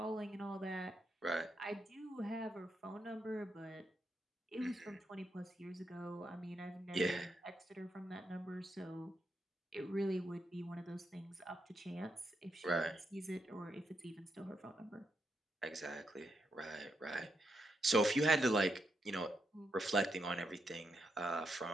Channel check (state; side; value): normal; both; correlation 0.81